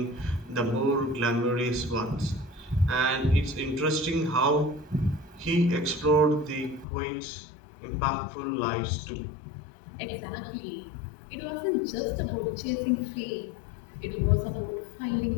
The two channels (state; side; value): drops out; right; at 6.9 s